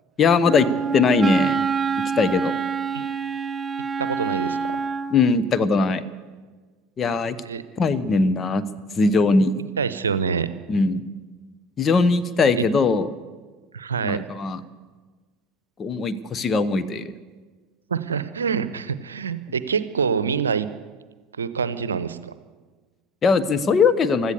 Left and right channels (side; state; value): both; normal; correlation 0.49